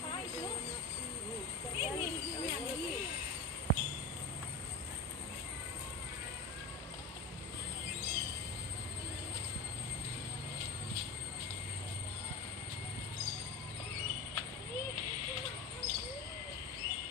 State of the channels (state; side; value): quieter; right; 3.6 dB